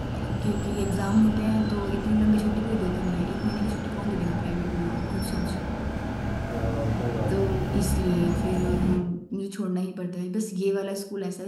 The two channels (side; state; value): both; identical; correlation 1.00